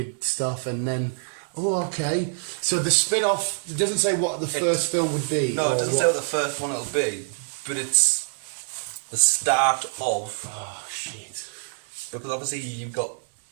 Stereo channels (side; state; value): left; silent; digital silence